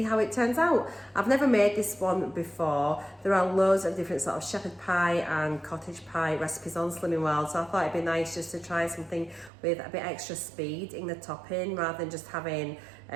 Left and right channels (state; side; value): drops out; left; at 9.5 s